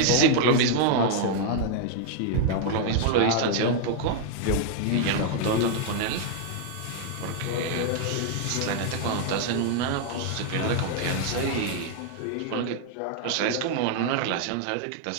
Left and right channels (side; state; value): both; different; correlation 0.00